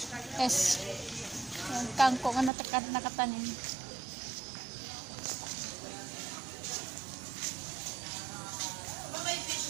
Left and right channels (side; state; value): left; drops out; at 2.5 s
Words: Yung kangkong ang nakatanim.